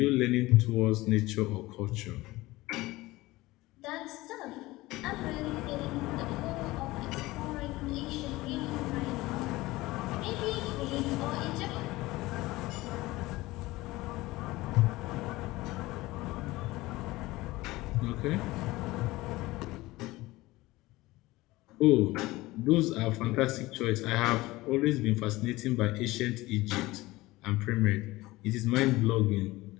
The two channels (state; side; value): quieter; right; 19.4 dB